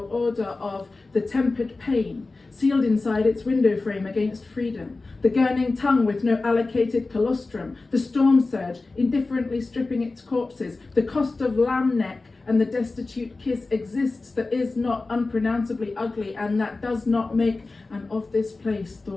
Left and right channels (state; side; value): quieter; right; 3.5 dB